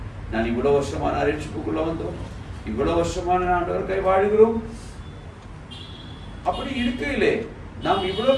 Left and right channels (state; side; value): identical; both; correlation 1.00